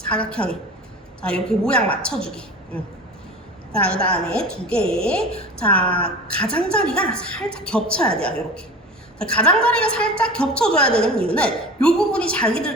자, 이렇게 모양 맞춰주기. 자, 그 다음에 두 개. 자, 가장자리가 살짝 겹쳐야 돼요. 이렇게. 가장자리가 살짝 겹쳐줘야 되는 이유는 이 부분이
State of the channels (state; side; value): normal; both; correlation 0.35